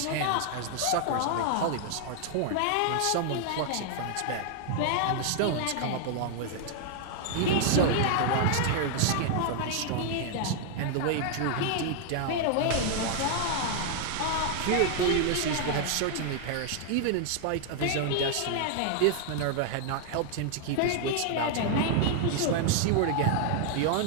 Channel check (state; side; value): different; both; correlation 0.00